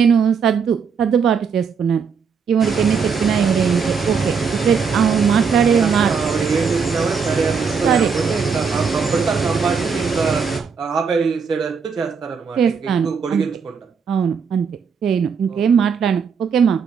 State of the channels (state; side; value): quieter; left; 6.0 dB